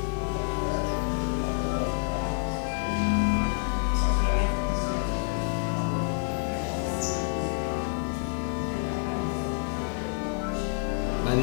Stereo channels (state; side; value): silent; right; 59 dB below the other